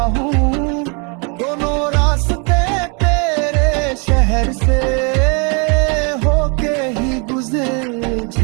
हूँ। दोनों रास्ते तेरे शहर से होके ही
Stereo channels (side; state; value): left; quieter; 34.2 dB